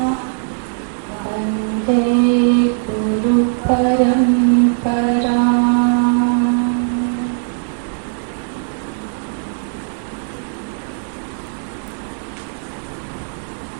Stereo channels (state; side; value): silent; left; digital silence